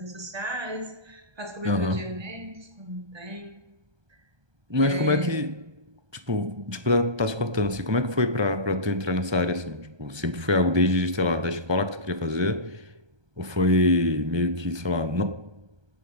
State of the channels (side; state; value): left; late; 1.2 ms